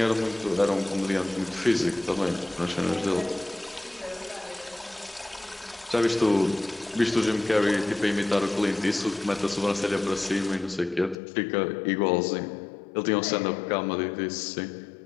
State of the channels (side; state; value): right; drops out; at 11.2 s